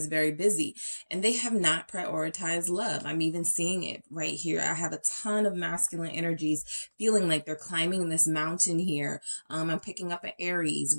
very busy and they have not prioritized love. I'm even seeing it right here. I have a ton of masculine energies feeling like they're climbing this mountain here. I'm picking up an Aries,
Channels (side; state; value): both; inverted; correlation -1.00